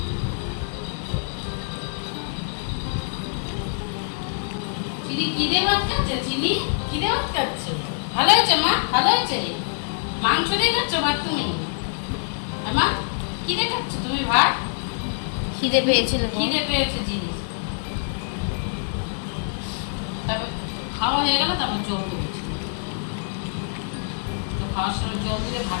চিনি কি দিয়ে ভাত খাচ্ছে? চিনি কি দিয়ে ভাত খাচ্ছে? ভালো হয়েছে মা, ভালো হয়েছে। মাংস দিয়ে খাচ্ছ ভাত তুমি? মা কি দিয়ে খাচ্ছ তুমি ভাত? খিদে পেয়েছিল। খিদে পেয়েছে জিনিস। তারপর খাওয়া হয়ে গেল, তারপর জল দিয়েছি। তো খাওয়ার সময় জল দিলে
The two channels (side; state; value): right; silent; digital silence